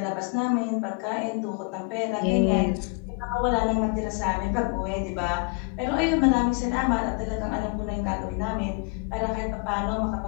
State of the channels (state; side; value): quieter; right; 33.5 dB